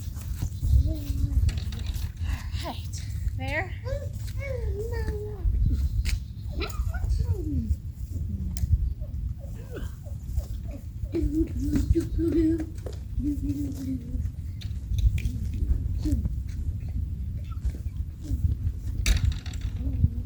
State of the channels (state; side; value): identical; both; correlation 1.00